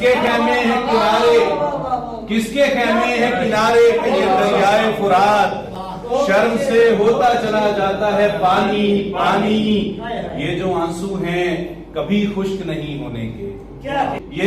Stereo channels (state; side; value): identical; both; correlation 1.00